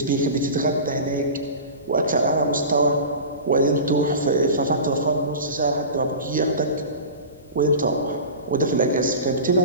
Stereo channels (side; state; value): both; inverted; correlation -0.32